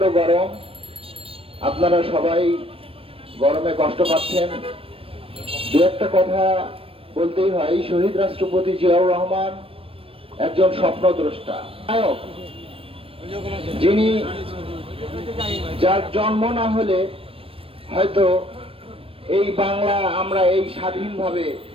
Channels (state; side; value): late; left; 0.27 ms